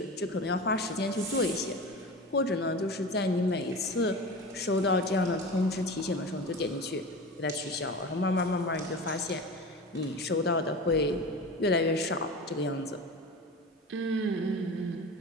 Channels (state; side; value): normal; both; correlation 0.31